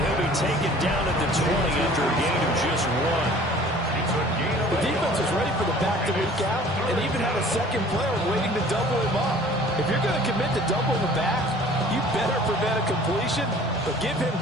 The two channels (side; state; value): both; normal; correlation 0.49